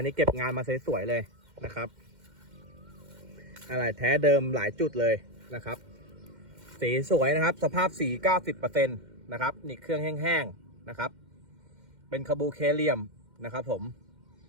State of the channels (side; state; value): left; late; 2.1 ms